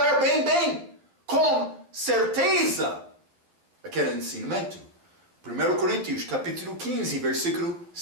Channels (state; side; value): late; left; 11 ms